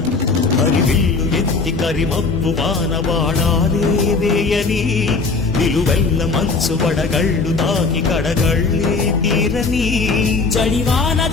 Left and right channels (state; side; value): quieter; right; 4.1 dB